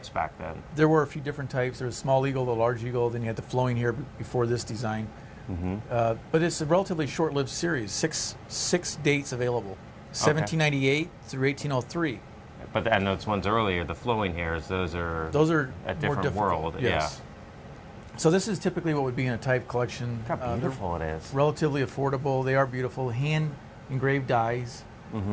back then. There were a few different types. There was small eagle, the large eagle, then you had the flowing hair before this design. But it's a relatively short-lived series. Six dates available, 1798 through 1803. And those ones earlier, the flowing hairs, those are a different world. Yes. Yeah. So this is typically what would be in a type collection. Look how beautiful it is. Relatively affordable. They are beautiful. Hand engraved dies.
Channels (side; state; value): both; identical; correlation 1.00